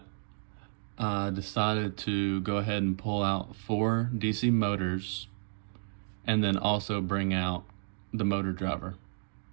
I decided to go ahead and pull out 4 DC motors and then also bring out the motor driver.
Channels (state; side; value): silent; left; digital silence